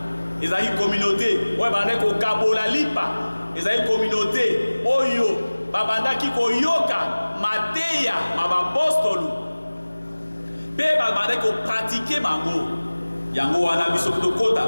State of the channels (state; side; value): inverted; both; correlation -1.00